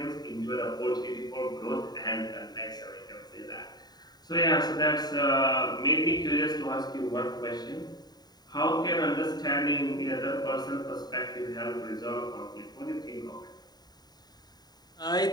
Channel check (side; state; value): right; late; 0.20 ms